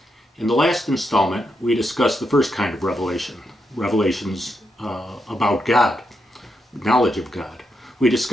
In the last installment, we discussed the first kind of revelation, revelations about God, knowledge of God. We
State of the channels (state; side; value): normal; both; correlation 0.83